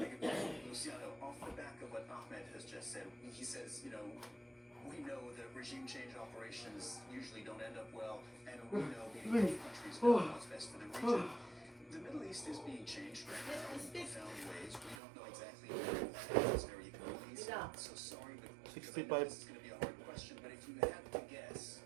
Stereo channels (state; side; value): drops out; left; at 15.0 s